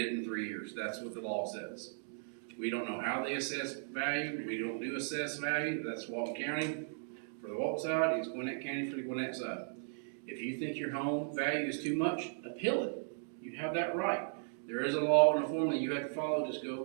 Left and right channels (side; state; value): left; silent; digital silence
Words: in 3 years. That's what the law says. We don't know how they assess value. We don't do assess value. That's Walton County for the Walton side. It's Gwinnett County for the Gwinnett side. If you think your home value is too much, appeal it. You have that right. There is a law and a formula you have to follow. Just go